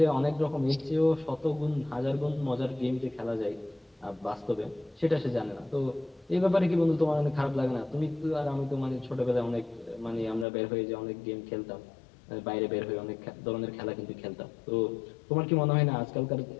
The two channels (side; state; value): right; drops out; at 10.5 s